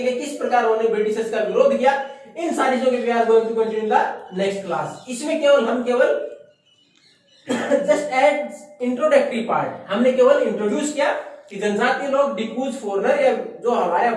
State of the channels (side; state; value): both; identical; correlation 1.00